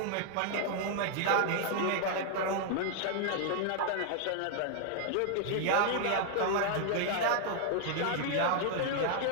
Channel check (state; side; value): different; both; correlation 0.00